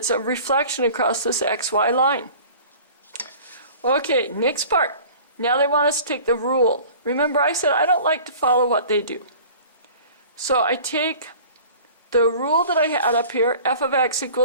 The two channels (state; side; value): inverted; both; correlation -0.44